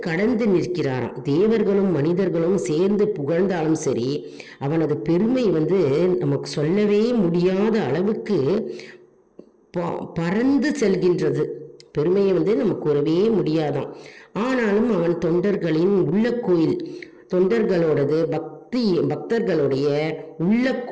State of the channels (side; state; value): both; identical; correlation 1.00